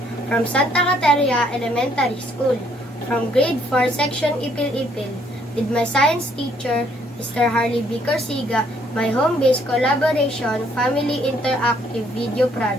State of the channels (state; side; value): normal; both; correlation 0.67